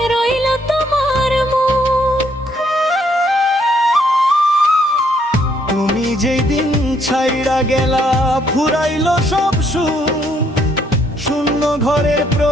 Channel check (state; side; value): normal; both; correlation 0.69